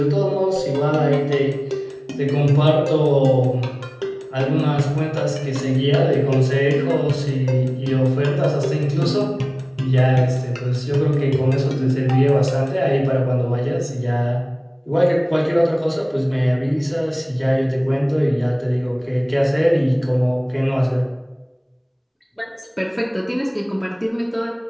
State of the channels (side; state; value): both; identical; correlation 1.00